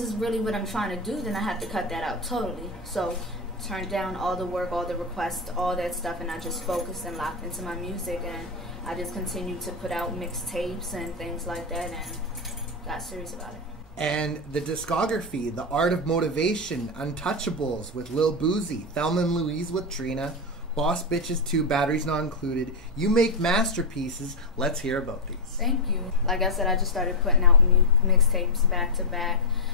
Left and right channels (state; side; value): normal; both; correlation 0.05